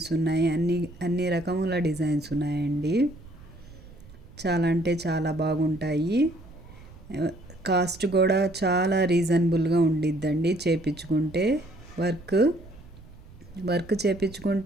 ఉన్నాయి, అన్ని రకముల డిజైన్స్ ఉన్నాయండి. చాలా అంటే చాలా బాగుంటాయి. కాస్ట్ కూడా చాలా రీజనబుల్గా ఉండిద్దండి. చేపించుకుంటే వర్క్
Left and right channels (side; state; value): right; noise; rumble, 20 dB below the sound